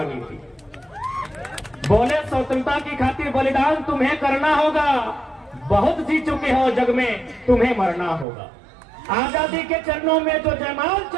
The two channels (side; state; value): left; drops out; at 8.2 s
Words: थी। बोले स्वतंत्रता की खातिर बलिदान तुम्हें करना होगा, बहुत जी चुके हो जग में तुम्हें मरना होगा। आजादी के चरणों में जो जयमाल